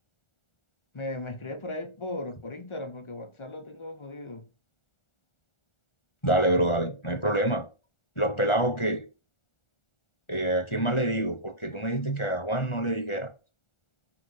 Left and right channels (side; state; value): right; late; 1.4 ms